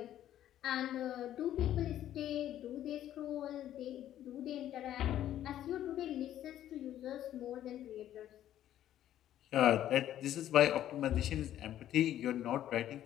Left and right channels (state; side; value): quieter; right; 11.9 dB